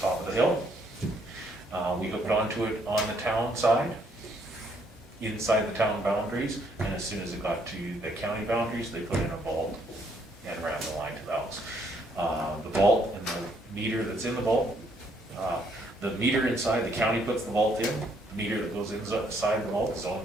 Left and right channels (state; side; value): normal; both; correlation 0.69